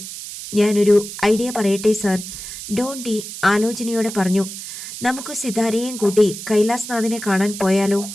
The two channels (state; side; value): noise; right; hiss, 10 dB below the sound